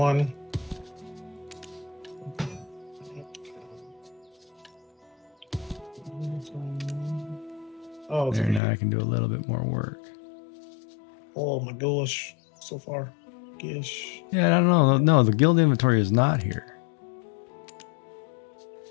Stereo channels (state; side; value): drops out; right; at 8.6 s